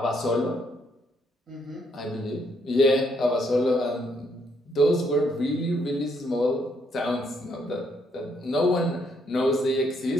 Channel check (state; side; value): normal; both; correlation 0.72